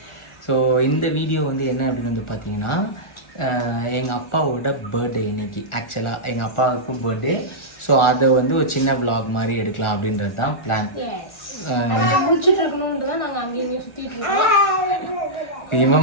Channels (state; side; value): late; right; 1.4 ms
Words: ஸோ இந்த வீடியோ என்ன அப்படின்னு பார்த்தீங்கன்னா, எங்கள் அப்பாவோட பர்த்டே இன்னைக்கு. ஆக்சுவலாக எங்கள் அப்பாவுக்கும் பர்த்டே. ஸோ அதை ஒரு சின்ன விலாக் மாதிரி எடுக்கலாம் அப்படின்றது தான் பிளான்.